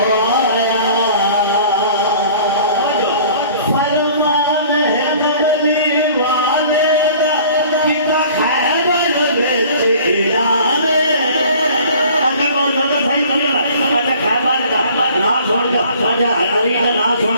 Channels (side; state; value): both; inverted; correlation -0.49